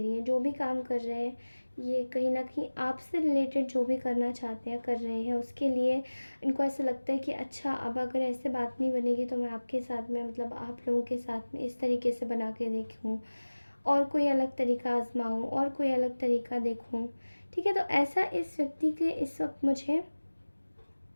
है. जो भी काम कर रहे हैं ये कहीं ना कहीं आपसे रिलेटेड जो भी करना चाहते हैं कर रहे हैं, उसके लिए इनको ऐसा लगता है कि अच्छा अब अगर ऐसे बात नहीं बनेगी तो मैं आपके साथ में मतलब आप लोगों के साथ में इस तरीके से बना के देखूँ और कोई अलग तरीका आजमाऊँ और कोई अलग तरीका देखूँ. ठीक है, तो ऐसा इस व्यक्ति के इस वक्त मुझे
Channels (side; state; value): both; inverted; correlation -1.00